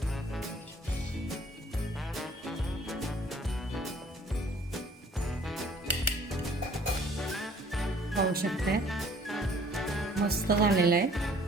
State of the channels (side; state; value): both; normal; correlation 0.56